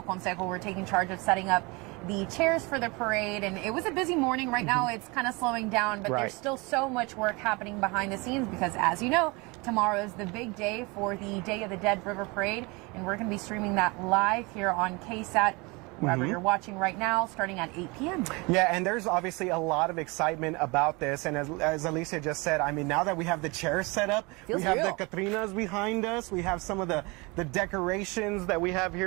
Consejo were taking charge of setting up the chairs for the parade, and it was a busy morning. Right now it's kind of slowing down, but there's still so much work happening behind the scenes because, as you know, tomorrow is the big day for the Day of the Dead River Parade, and we're going to be streaming that live here on KSAT, wherever you're watching right now, starting at 8 p.m. Yeah, and there's obviously a lot of excitement about this, and as Alicia just said, I mean, now that we have the chairs set up, we have the Catrinas behind us, we have some of the decorations that we have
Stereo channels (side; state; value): left; quieter; 26.7 dB